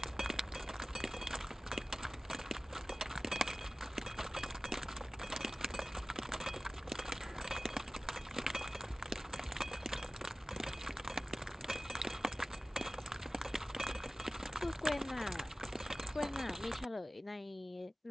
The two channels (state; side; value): normal; both; correlation 0.97